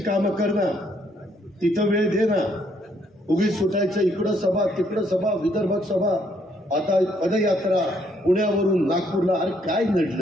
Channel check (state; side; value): normal; both; correlation 0.70